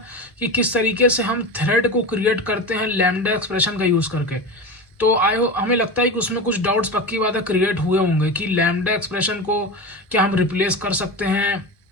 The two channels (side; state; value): both; normal; correlation 0.25